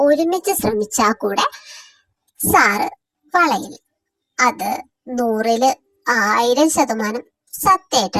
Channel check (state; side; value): identical; both; correlation 1.00